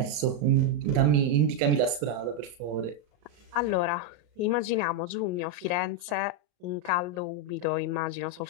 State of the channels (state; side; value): late; left; 35 ms